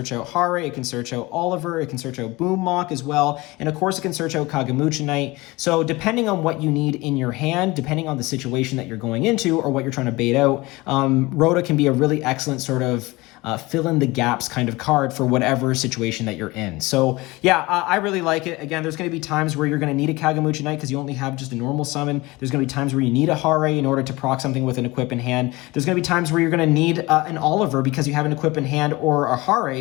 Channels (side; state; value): right; quieter; 21.9 dB